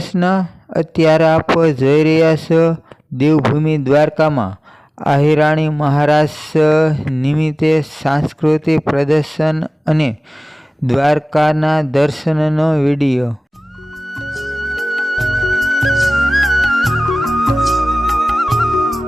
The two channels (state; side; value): normal; both; correlation 0.98